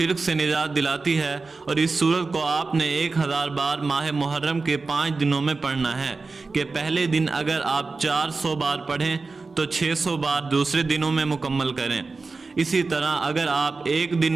سے نجات دلاتی ہے، اور اس سورت کو آپ نے 1000 بار ماہ محرم کے 5 دنوں میں پڑھنا ہے کہ پہلے دن اگر آپ 400 بار پڑھیں تو 600 بار دوسرے دنوں میں مکمل کریں۔ اسی طرح اگر آپ ایک دن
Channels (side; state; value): left; quieter; 4.0 dB